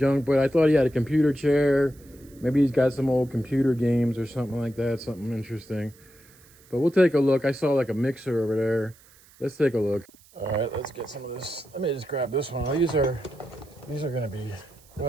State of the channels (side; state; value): right; noise; hiss, 27 dB below the sound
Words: But I thought he had a computer chair. Maybe he's got some old computer games or something like that. Something interesting. But we'll take a look. I saw like a mixer over there. Let's take a look. All right, let's get some of this. Let me just grab this one. These are gonna be,